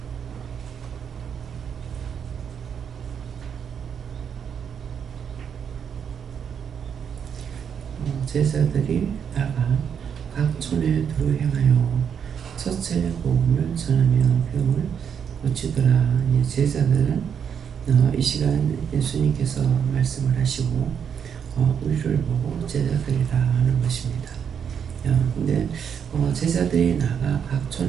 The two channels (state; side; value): quieter; left; 7.6 dB